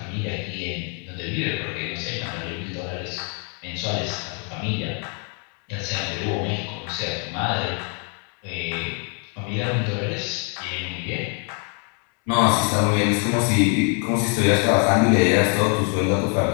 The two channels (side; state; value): right; quieter; 38.6 dB